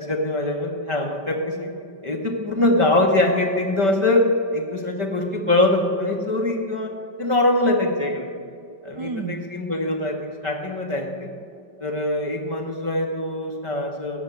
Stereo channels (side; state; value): left; late; 5.1 ms